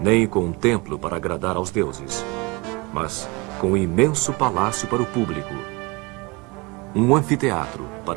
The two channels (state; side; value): quieter; left; 26.3 dB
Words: com um templo para agradar aos deuses, mas com um imenso palácio para o público. Um anfiteatro